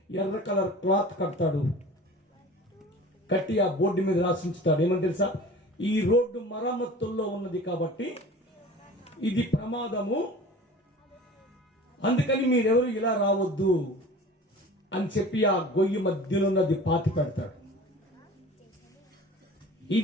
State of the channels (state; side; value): normal; both; correlation 0.41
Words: ఎర్ర కలర్ క్లాత్ కడతాడు, కట్టి ఆ బోర్డు మీద రాసి ఉంచుతాడు. ఏమని తెలుసా? ఈ రోడ్డు మరమ్మతుల్లో ఉన్నది కాబట్టి ఇది ప్రమాదము, అందుకని మీరెవరు ఇలా రావద్దు అని చెప్పి ఆ గొయ్యి మధ్యలో ఉన్నది పాతి పెడతాడు.